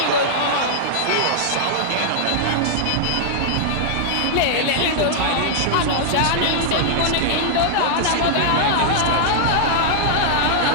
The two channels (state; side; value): different; both; correlation -0.01